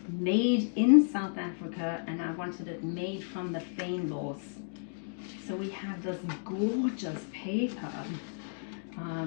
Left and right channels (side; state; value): right; silent; digital silence